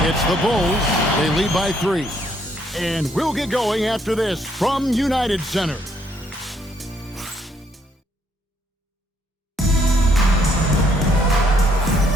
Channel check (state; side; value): normal; both; correlation 0.70